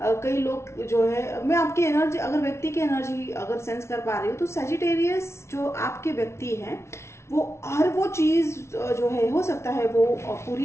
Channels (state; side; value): late; right; 0.13 ms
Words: कई लोग जो है, मैं आपकी एनर्जी, अगर व्यक्ति की एनर्जी अगर सेंस कर पा रही हूँ तो सैजिटेरियस जो आपके व्यक्ति हैं वो हर वो चीज जो है हो सकता है वो